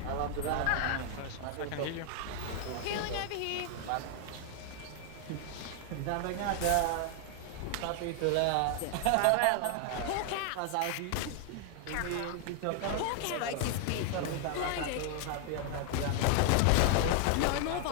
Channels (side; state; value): both; different; correlation 0.00